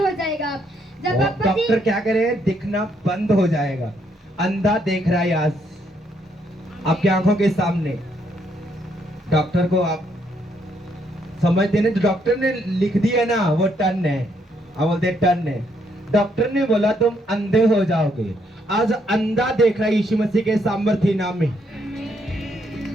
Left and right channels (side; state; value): both; normal; correlation 0.73